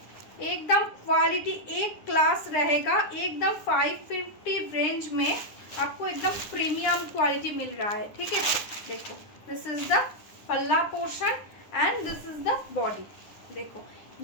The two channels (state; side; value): late; right; 9.9 ms